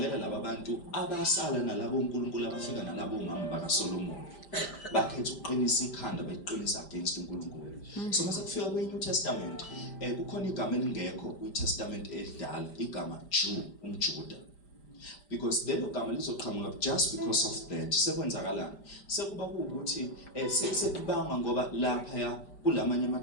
laba bantu abasala nalabo uNkulunkulu abafika nalabo umama bakaSolomon bakhetha ukuqinisa ikhanda beqinisa against uNkulunkulu. So mase kufika kweNew Testament kukhona igama elingekho kwiTestament elidala, igama Jew, umJuda. Because lelo gama lizoqhamuka just because of that. Sekwenzakalani? Sekuba ukuthi sekubanga ngoba lapha ya kulamanye ama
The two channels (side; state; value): right; late; 5.1 ms